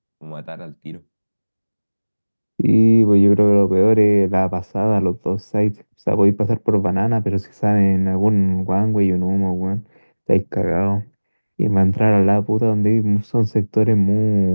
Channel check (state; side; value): inverted; both; correlation -1.00